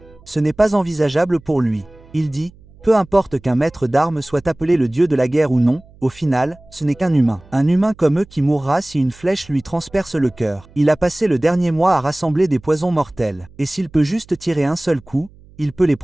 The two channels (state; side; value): noise; right; hum, 25 dB below the sound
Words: Ce n'est pas envisageable pour lui. Il dit, peu importe qu'un maître d'armes soit appelé le dieu de la guerre ou non, au final, ce n'est qu'un humain. Un humain comme eux qui mourra si une flèche lui transperce le cœur. Il a passé le dernier mois à rassembler des poisons mortels. Et s'il peut juste tirer un seul coup, il peut les